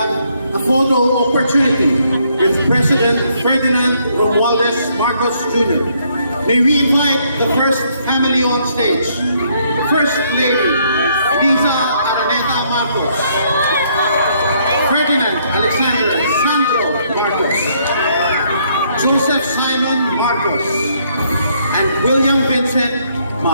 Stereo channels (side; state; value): both; inverted; correlation -0.70